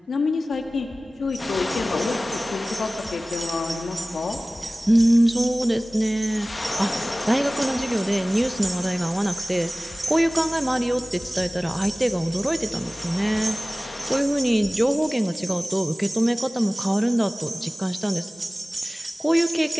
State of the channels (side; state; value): both; normal; correlation 0.98